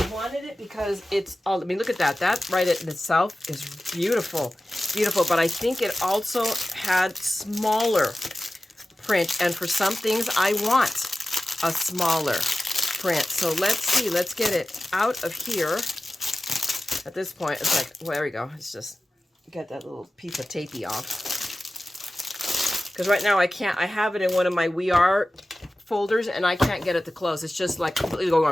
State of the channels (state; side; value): normal; both; correlation 0.95